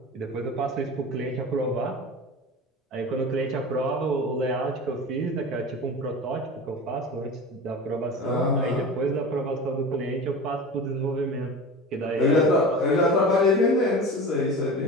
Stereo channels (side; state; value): both; normal; correlation 0.32